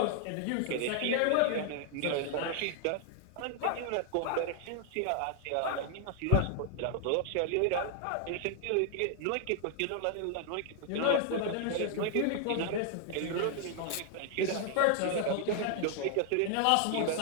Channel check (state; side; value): different; both; correlation 0.00